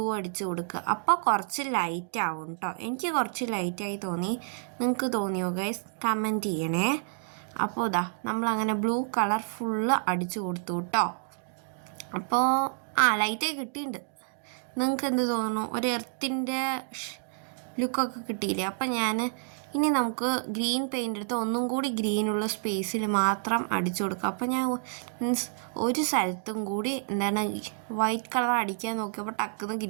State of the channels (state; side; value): silent; left; digital silence